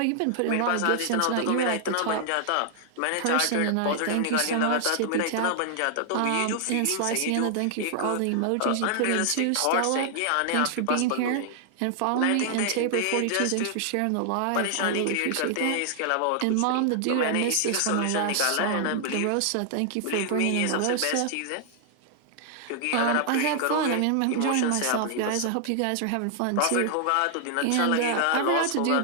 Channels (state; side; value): different; both; correlation 0.00